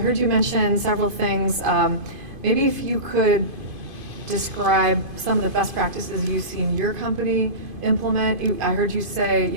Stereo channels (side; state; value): left; late; 2.5 ms